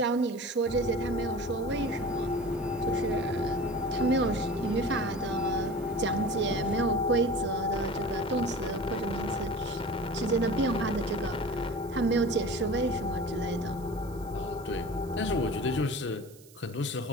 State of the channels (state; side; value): noise; right; hiss, 24 dB below the sound